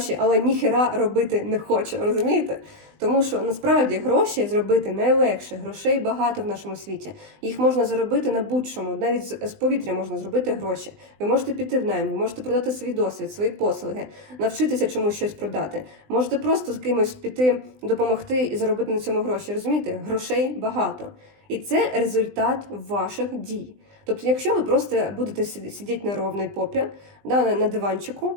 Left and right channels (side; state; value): left; late; 20 ms